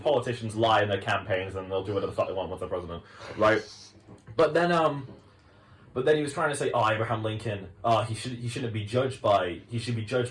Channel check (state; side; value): identical; both; correlation 1.00